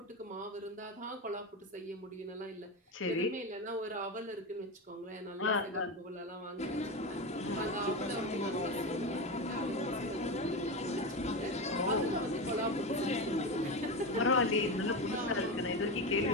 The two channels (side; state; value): both; normal; correlation 0.18